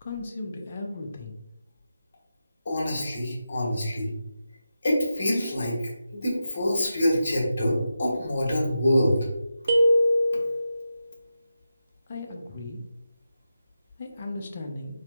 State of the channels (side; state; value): both; inverted; correlation -0.90